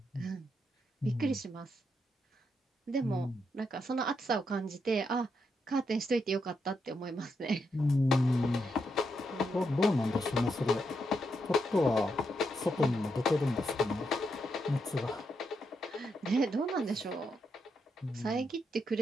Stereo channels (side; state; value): both; normal; correlation 0.81